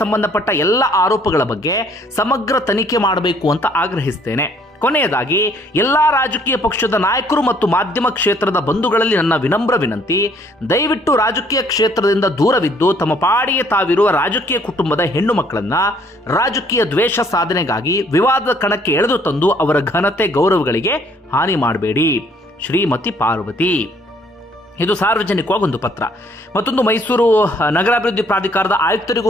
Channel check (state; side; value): normal; both; correlation 0.62